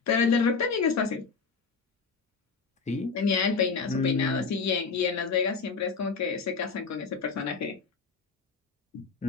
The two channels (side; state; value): right; quieter; 5.0 dB